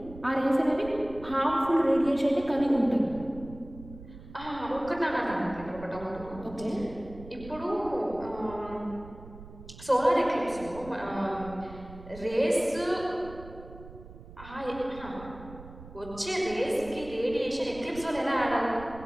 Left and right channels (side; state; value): right; noise; rumble, 16 dB below the sound